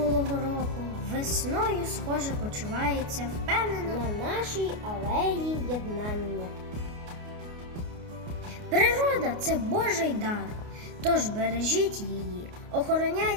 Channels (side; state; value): left; late; 29 ms